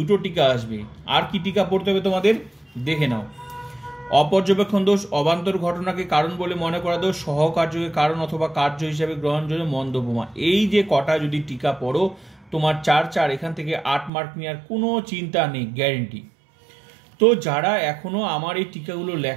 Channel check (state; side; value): drops out; left; at 14.1 s